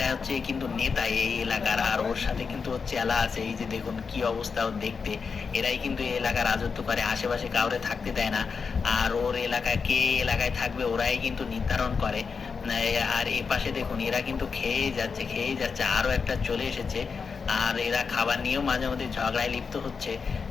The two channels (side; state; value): right; quieter; 5.4 dB